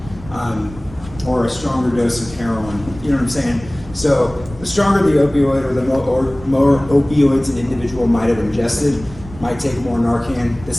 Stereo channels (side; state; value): right; noise; rumble, 16 dB below the sound